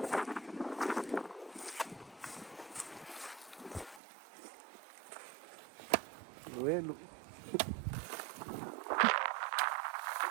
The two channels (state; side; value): drops out; left; at 4.0 s